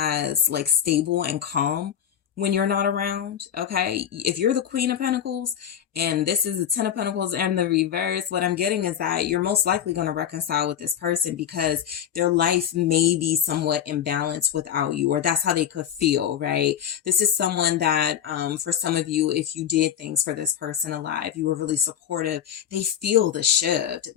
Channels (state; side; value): quieter; right; 9.4 dB